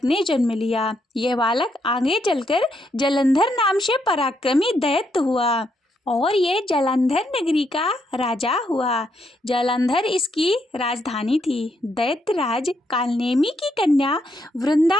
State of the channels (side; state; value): both; normal; correlation 0.77